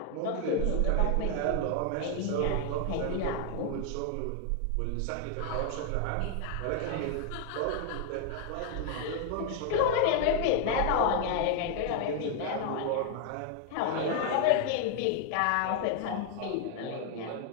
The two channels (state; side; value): different; both; correlation 0.00